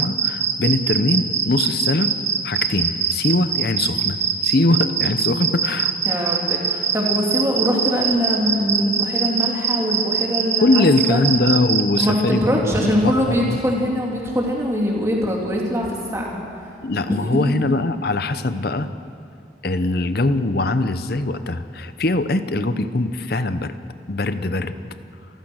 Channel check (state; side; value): normal; both; correlation 0.44